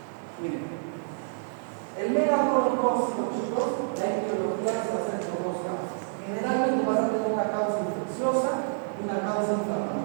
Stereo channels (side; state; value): left; silent; digital silence